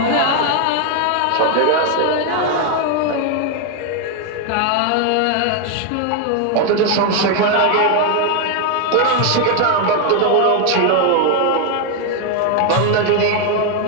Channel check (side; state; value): both; different; correlation 0.01